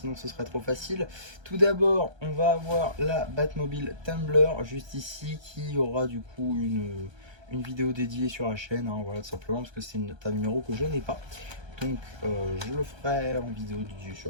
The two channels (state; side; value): late; left; 1.3 ms